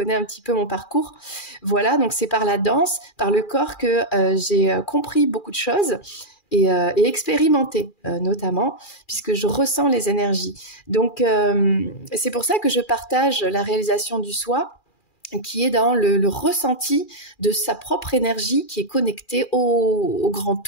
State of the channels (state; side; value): late; right; 2.4 ms